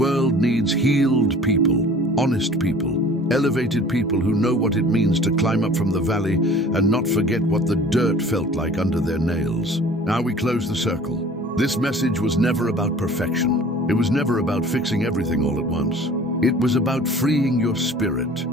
needs healed people, honest people, elevated people who know what it means to climb up from the valley and not forget what the dirt felt like under their nails. Now we close the circle. This message was never about perfection. It was never about fixing everything all at once. It was about freeing your spirit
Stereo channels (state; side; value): normal; both; correlation 0.47